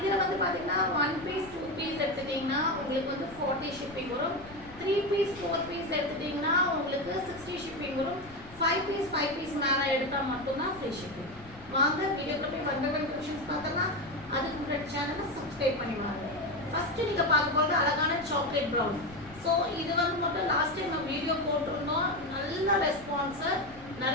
வந்து பாத்தீங்கன்னா 1 piece 2 piece எடுத்துட்டீங்கன்னா உங்களுக்கு வந்து 40 shipping வரும். 3 piece 4 piece எடுத்துட்டீங்கன்னா உங்களுக்கு 60 shipping வரும். 5 piece மேல எடுத்தா மட்டும் தான் free shipping. வாங்க வீடியோக்குள்ள போய் one by one collections பார்த்தலாம். அதுக்கு முன்னாடி சேனலை subscribe பண்ணி வாங்க. ஃபர்ஸ்ட் நீங்க பார்க்க போறது அழகான சாக்லேட் பிரவுன். சோ இது வந்து மட்டும் லாஸ்ட் டைம் நம்ம வீடியோ போட்டுருந்தோம். நல்ல ரெஸ்பான்ஸ்,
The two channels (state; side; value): noise; left; rumble, 20 dB below the sound